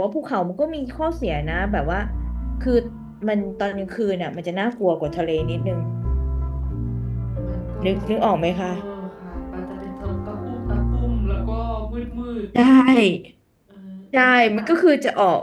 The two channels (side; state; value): both; identical; correlation 1.00